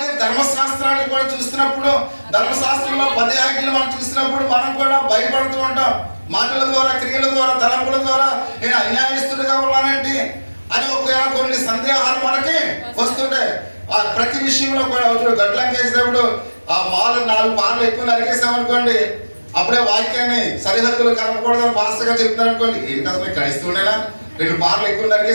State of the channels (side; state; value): both; inverted; correlation -1.00